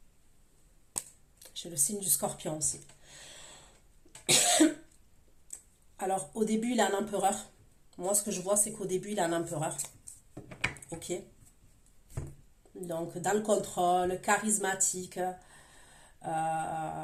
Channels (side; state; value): both; identical; correlation 1.00